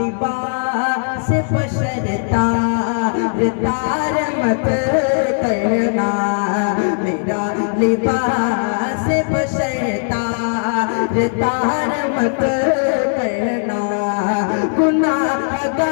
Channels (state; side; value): silent; right; 67 dB below the other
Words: बशर तार मत करना, मेरा लिबास बशर तार मत करना।